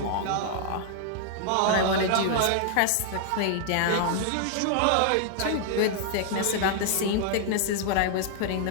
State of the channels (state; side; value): different; both; correlation -0.01